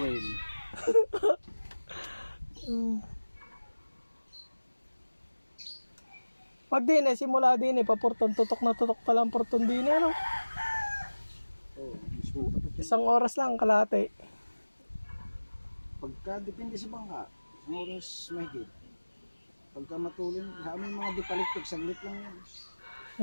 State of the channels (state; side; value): inverted; both; correlation -1.00